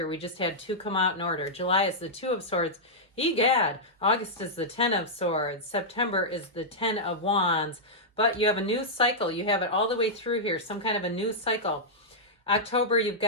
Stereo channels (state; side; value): normal; both; correlation -0.09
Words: We just had 2 come out in order. July is the Two of Swords. Egad. August is the 10 of Swords. September is the 10 of Wands. But you have a new cycle. You have it all the way through here, some kind of a new cycle. October, you've